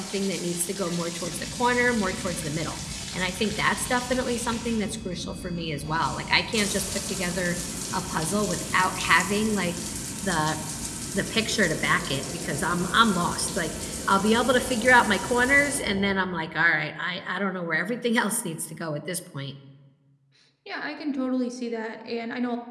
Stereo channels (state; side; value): identical; both; correlation 1.00